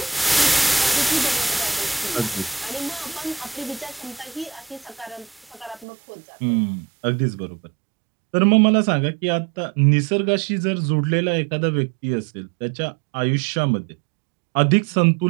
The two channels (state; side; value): drops out; left; at 5.9 s